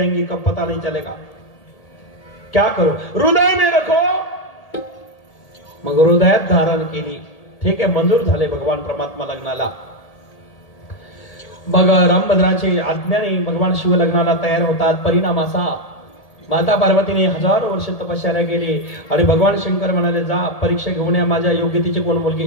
कब पता नहीं चलेगा. क्या करो, हृदय में रखो. मग हृदयात धारण केली. ठीक आहे, मंजूर झाले भगवान परमात्मा लग्नाला. मग रामभद्राचे आज्ञाने भगवान शिव लग्नाला तयार होतात. परिणाम असा माता पार्वतीने 1000 वर्ष तपश्चर्या केली आणि भगवान शंकर म्हणाले जा परीक्षा घेऊन या माझ्या योग्यतेची कोण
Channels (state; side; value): late; right; 1.8 ms